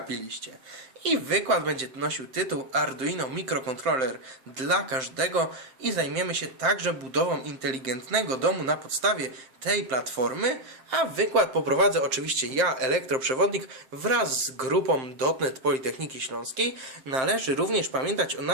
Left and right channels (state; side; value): late; left; 7.6 ms